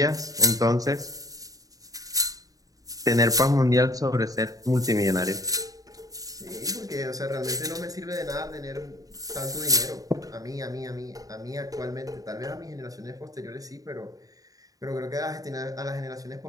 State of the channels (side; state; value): left; late; 0.17 ms